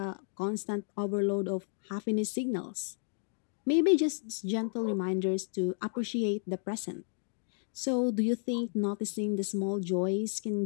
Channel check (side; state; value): right; silent; digital silence